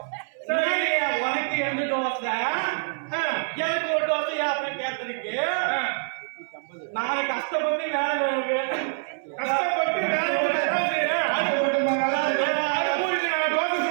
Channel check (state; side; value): silent; left; 60 dB below the other